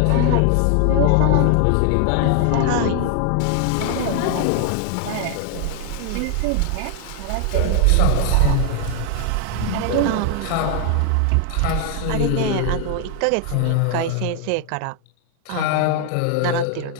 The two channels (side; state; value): both; different; correlation 0.00